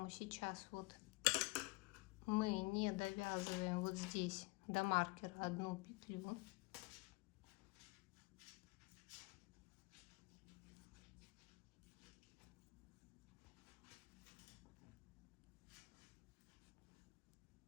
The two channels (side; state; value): right; quieter; 25.8 dB